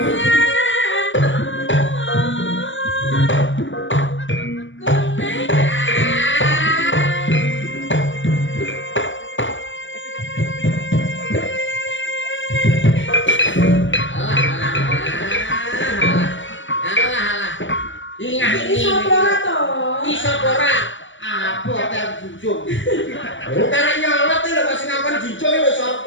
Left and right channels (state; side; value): late; right; 0.55 ms